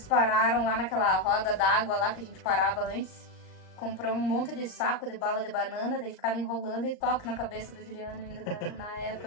pararam lá naquela roda d'água lá que a gente parava antes. Comprou um monte de saco de bala de banana, daí ficava enrolando e toque na cabeça do Juliano ainda na época,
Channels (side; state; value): right; late; 39 ms